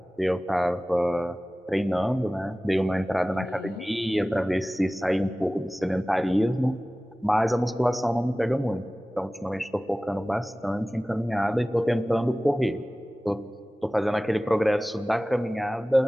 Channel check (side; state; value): both; normal; correlation 0.97